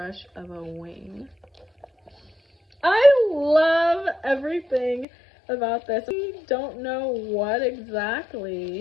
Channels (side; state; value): right; drops out; at 5.1 s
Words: of a wing. I love everything about this. We don't know what